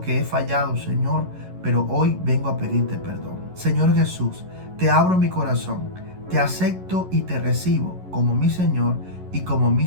he fallado, Señor, pero hoy vengo a pedirte perdón. Señor Jesús, te abro mi corazón, te acepto y te recibo como mi Señor y como mi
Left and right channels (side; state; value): left; late; 11 ms